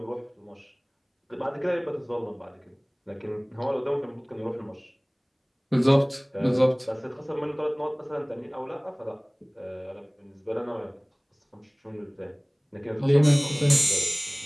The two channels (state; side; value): identical; both; correlation 1.00